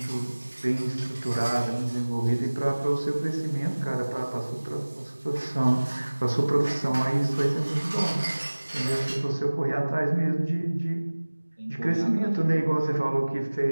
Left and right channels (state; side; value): inverted; both; correlation -1.00